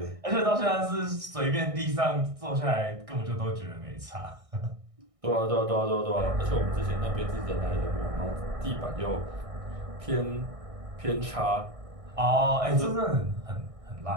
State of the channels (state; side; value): late; left; 1.6 ms